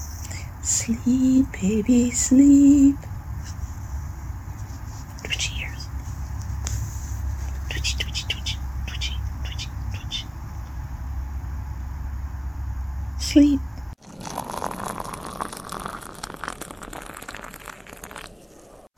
Sleep, baby, sleep. Twitchy ears. Twitchy, twitchy, twitchy, twitchy, twitchy, twitchy. Sleep.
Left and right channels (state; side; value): identical; both; correlation 1.00